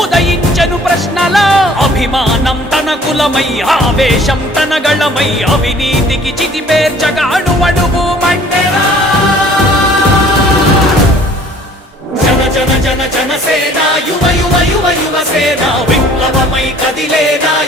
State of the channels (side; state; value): both; normal; correlation 0.53